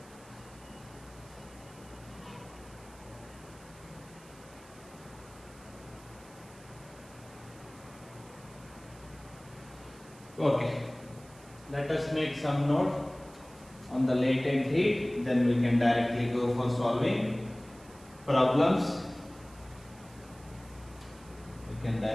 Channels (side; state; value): right; noise; hiss, 23 dB below the sound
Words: Okay, let us make some note on the latent heat, then we can directly go for solving problems. We can